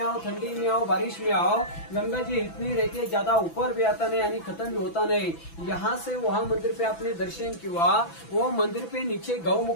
ठंडी में आओ, बारिश में आओ, गंगा जी इतनी रहती है, ज्यादा ऊपर भी आता नहीं यानी खत्म भी होता नहीं। यहाँ से वहाँ मंदिर पे आपने दर्शन किया, वो मंदिर पे नीचे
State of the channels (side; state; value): right; late; 6.0 ms